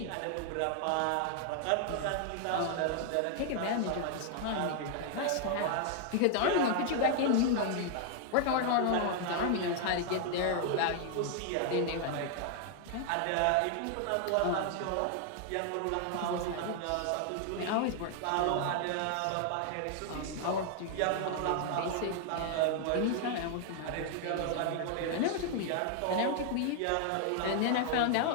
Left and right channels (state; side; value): different; both; correlation 0.00